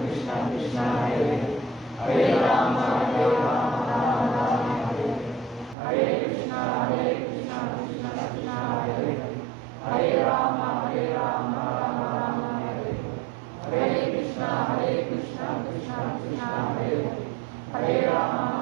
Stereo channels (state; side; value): drops out; left; at 5.8 s